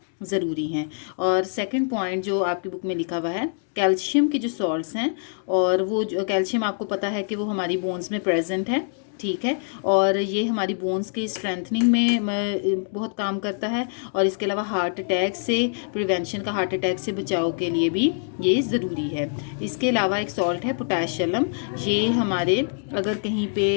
ज़रूरी हैं। और सेकंड पॉइंट जो आपकी बुक में लिखा हुआ है, कैल्शियम के जो सॉल्ट्स हैं, और वो जो कैल्शियम आपको पता है कि वो हमारी बोन्स में प्रेजेंट है, ठीक है, और ये हमारी बोन्स के स्ट्रेंथनिंग में बहुत काम करता है। और इसके अलावा हार्ट अटैक से प्रिवेंशन का, हार्ट अटैक से बचाव के लिए भी ये ज़रूरी है। इसके अलावा एक सॉल्ट है पोटाशियम, ये हमारे अगर कहीं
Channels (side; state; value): right; silent; digital silence